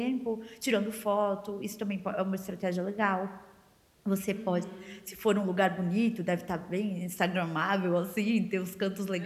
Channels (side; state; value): both; identical; correlation 1.00